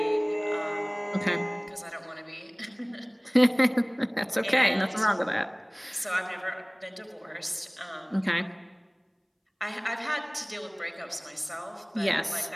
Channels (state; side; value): identical; both; correlation 1.00